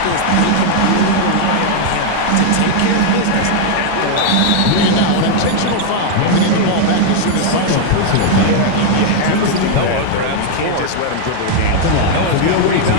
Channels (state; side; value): different; both; correlation 0.00